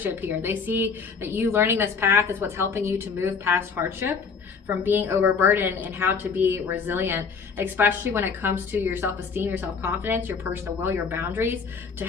here. They see that you learning this path is what's helping you to move past hardship, from being overburdened, and how to be resilient, especially when it comes to your self-esteem, your self-confidence, your personal will, your boundaries, to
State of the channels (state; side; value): quieter; right; 5.5 dB